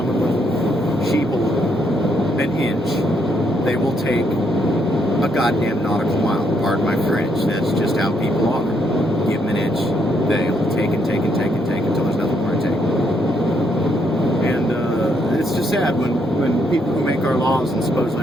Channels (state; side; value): normal; both; correlation 0.75